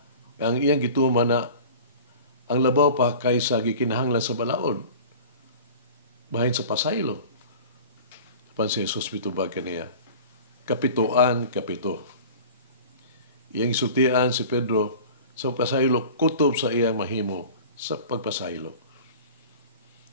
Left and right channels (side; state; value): both; inverted; correlation -0.40